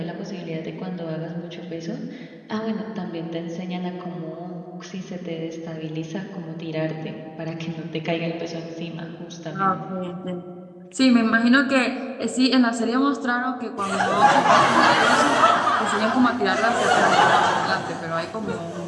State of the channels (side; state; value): both; identical; correlation 1.00